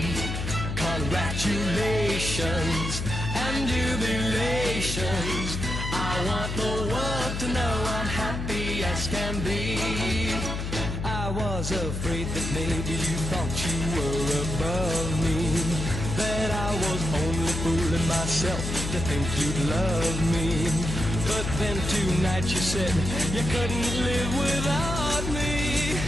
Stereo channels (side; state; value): left; noise; hum, 4 dB below the sound